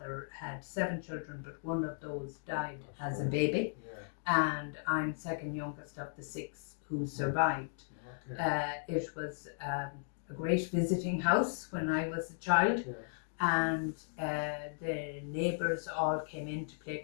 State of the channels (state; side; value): silent; right; digital silence